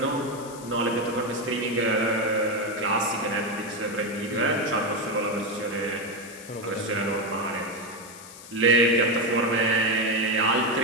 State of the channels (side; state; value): left; noise; hiss, 17 dB below the sound